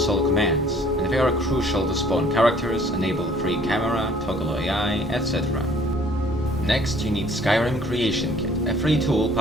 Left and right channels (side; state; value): both; normal; correlation 0.57